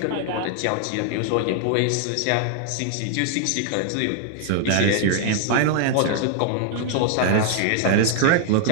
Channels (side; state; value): both; different; correlation -0.01